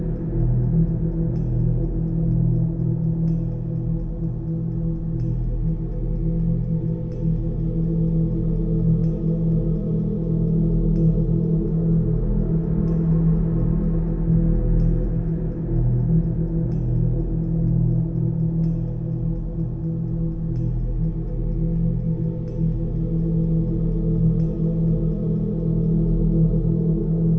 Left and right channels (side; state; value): both; identical; correlation 1.00